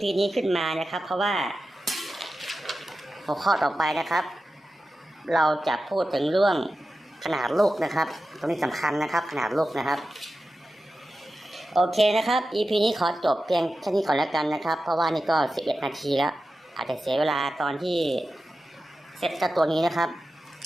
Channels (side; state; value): both; normal; correlation 0.92